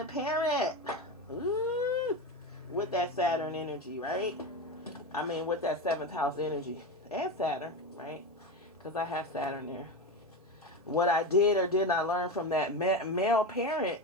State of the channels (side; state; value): both; normal; correlation 0.20